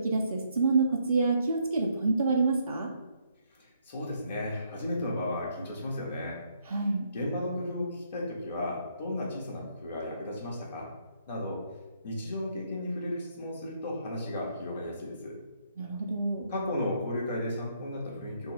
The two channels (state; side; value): inverted; both; correlation -0.72